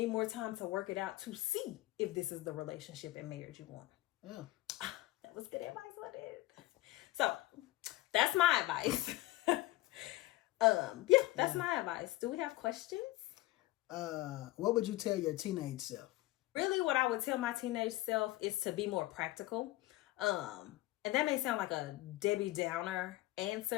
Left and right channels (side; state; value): right; quieter; 18.0 dB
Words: more time to work it out to see if this is the relationship and marriage you want. Yeah. That was good advice, wasn't it? So that's my advice. That's my advice. Do we have questions? What would you tell your teenage self? Really, what I would tell my teenage self is to be more practical. And that may sound like a Debbie Downer